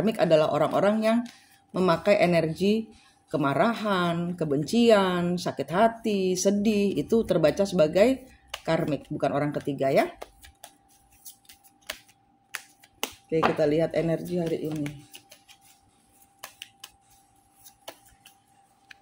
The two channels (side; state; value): both; identical; correlation 1.00